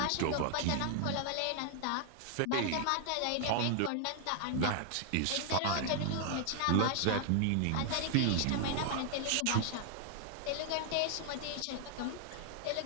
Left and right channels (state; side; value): different; both; correlation 0.00